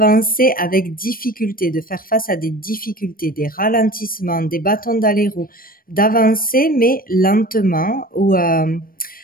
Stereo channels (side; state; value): right; late; 0.41 ms